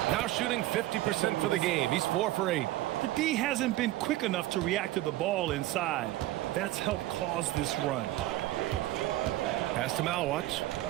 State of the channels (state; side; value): quieter; left; 16.2 dB